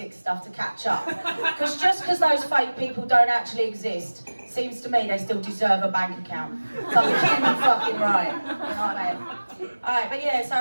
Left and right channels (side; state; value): both; inverted; correlation -1.00